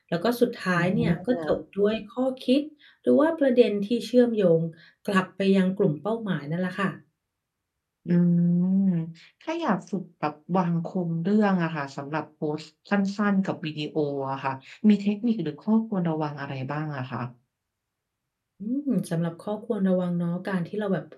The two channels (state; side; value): identical; both; correlation 1.00